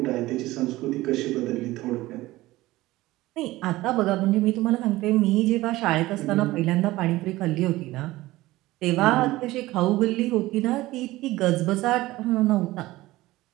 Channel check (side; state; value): left; quieter; 18.0 dB